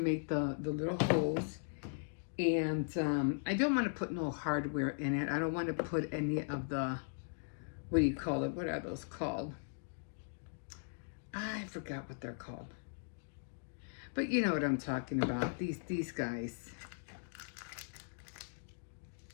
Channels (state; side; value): silent; right; digital silence